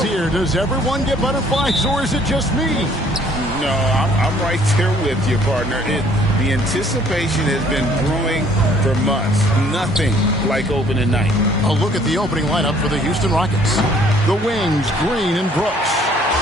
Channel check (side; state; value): both; normal; correlation 0.59